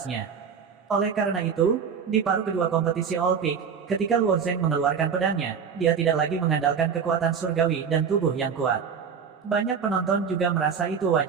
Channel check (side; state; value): left; quieter; 6.7 dB